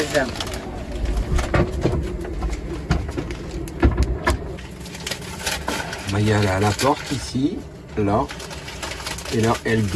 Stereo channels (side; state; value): both; identical; correlation 1.00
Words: Maya, elle est à la porte ici, là, et là, elle